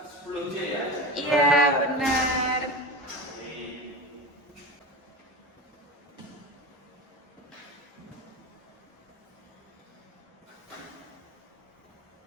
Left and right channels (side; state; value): both; normal; correlation 0.27